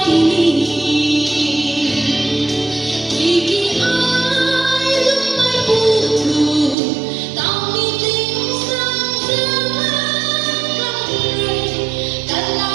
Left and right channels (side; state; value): left; drops out; at 6.8 s